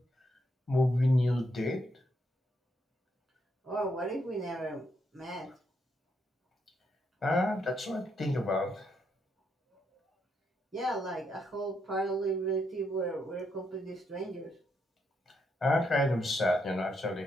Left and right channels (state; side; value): normal; both; correlation 0.78